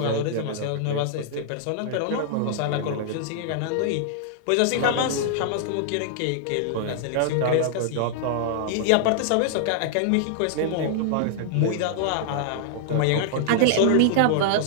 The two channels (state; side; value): different; both; correlation -0.01